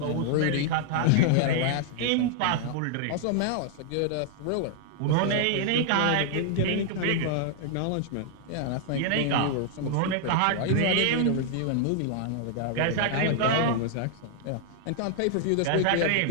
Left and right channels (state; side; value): different; both; correlation -0.01